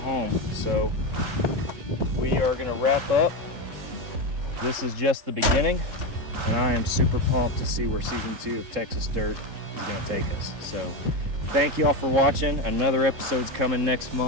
So we are going to wrap up. This is just the beginning, and I am super pumped to see where season 2 of Texas Dirt is going to take us. So thank you all for watching. Another episode's coming next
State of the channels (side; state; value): left; late; 3.8 ms